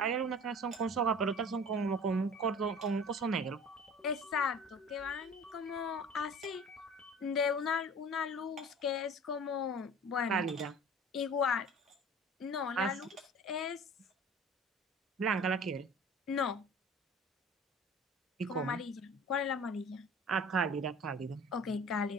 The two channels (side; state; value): both; normal; correlation 0.43